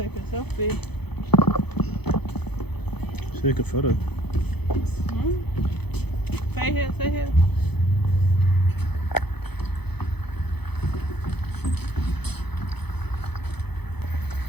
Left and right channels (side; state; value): right; late; 0.98 ms